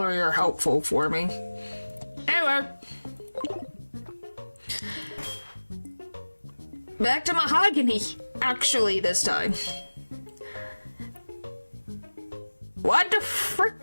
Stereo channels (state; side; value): inverted; both; correlation -1.00